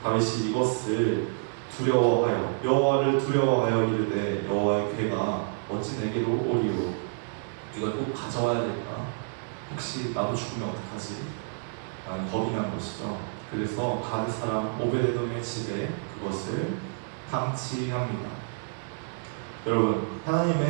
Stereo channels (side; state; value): left; silent; digital silence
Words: 다윗이 이것을 두려워하여, 여호와를 두려워하여 이르되 여호와의 궤가 어찌 내게로 오리오. 이걸 꼭 가져와야 될까? 혹시 나도 죽으면 어떡하지? 라는 겁이 난 것이죠. 그래서 가드 사람 오베데돔의 집에 그것을 방치합니다. 여러분,